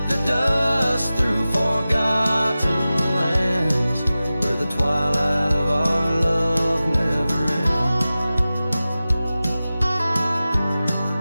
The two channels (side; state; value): both; inverted; correlation -0.96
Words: the dust through forgotten lands, where the twilight of our love never